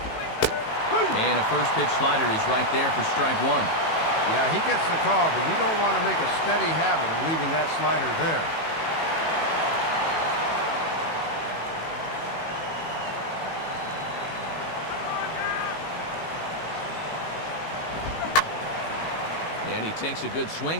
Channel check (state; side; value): late; right; 18 ms